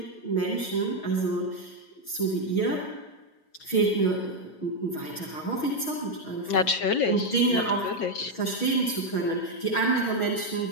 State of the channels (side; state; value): right; late; 6.3 ms